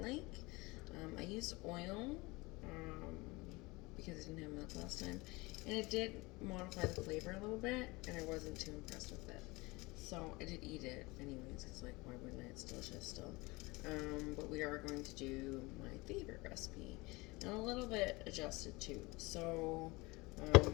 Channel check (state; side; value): quieter; right; 23.6 dB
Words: like. I used oil, because I didn't have milk last time, and it did modify the flavor a little bit, and I wasn't too impressed with it. So I did eat it anyways, because like, why wouldn't I? It's delicious still. But we are going to do my favorite recipe, and a little bit adjusted too. So I